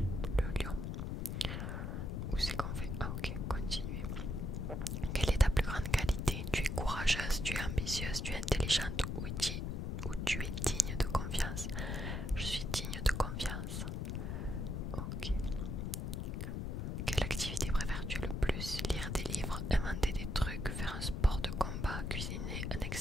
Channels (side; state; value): left; noise; rumble, 2 dB below the sound